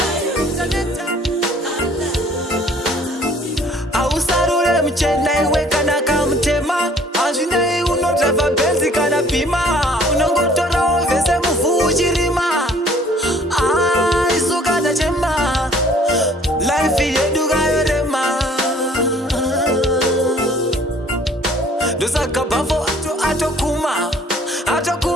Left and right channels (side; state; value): both; normal; correlation 0.55